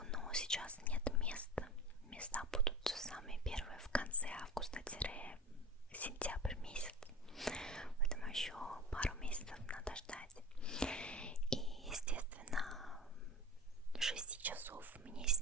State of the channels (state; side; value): normal; both; correlation 0.34